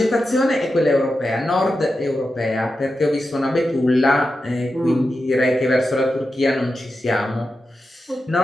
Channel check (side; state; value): both; normal; correlation 0.90